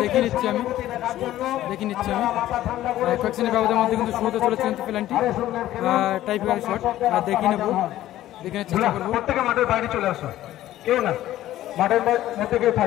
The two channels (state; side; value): quieter; right; 13.9 dB